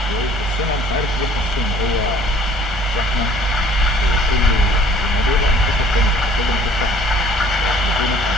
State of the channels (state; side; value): normal; both; correlation 0.55